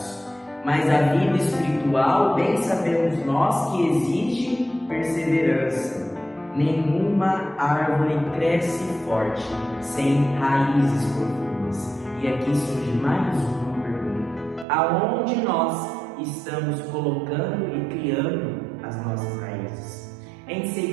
mas a vida espiritual, bem sabemos nós que exige perseverança. Nenhuma árvore cresce forte sem raízes profundas. E aqui surge mais uma pergunta: aonde nós estamos colocando e criando as nossas raízes? Em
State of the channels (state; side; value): drops out; left; at 14.7 s